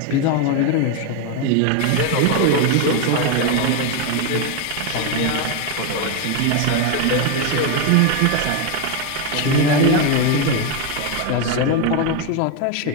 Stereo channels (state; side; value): different; both; correlation 0.02